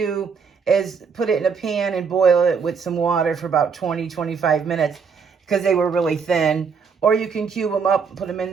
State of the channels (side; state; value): left; quieter; 5.8 dB